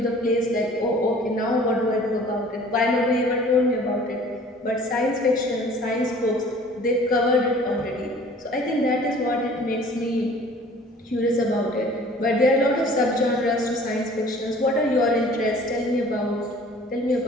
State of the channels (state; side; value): normal; both; correlation 0.50